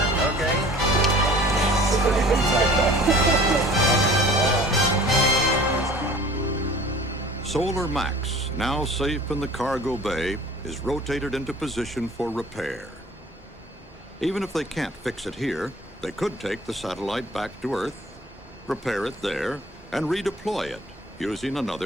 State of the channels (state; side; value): normal; both; correlation 0.47